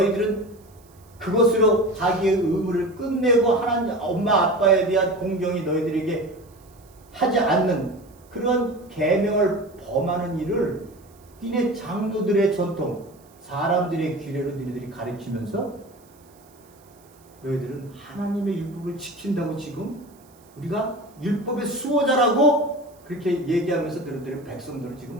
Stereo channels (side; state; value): right; noise; hiss, 30 dB below the sound